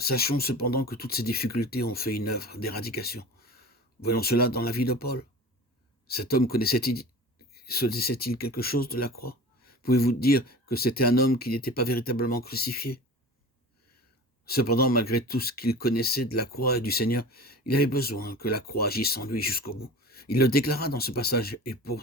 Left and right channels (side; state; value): both; normal; correlation 0.36